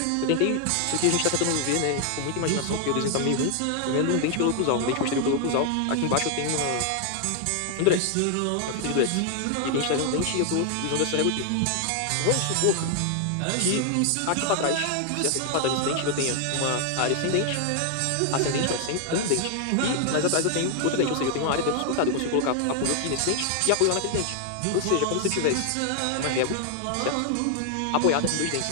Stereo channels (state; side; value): different; both; correlation 0.00